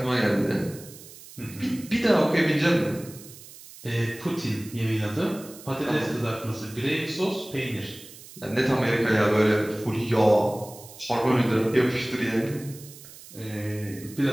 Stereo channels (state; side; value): noise; right; hiss, 18 dB below the sound